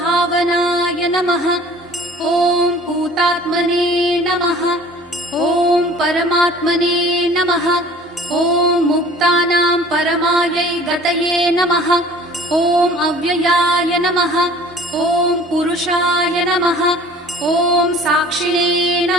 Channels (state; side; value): normal; both; correlation 0.48